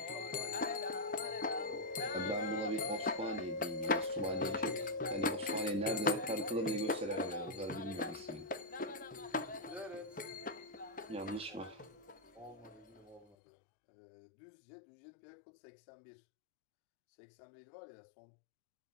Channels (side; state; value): right; drops out; at 13.4 s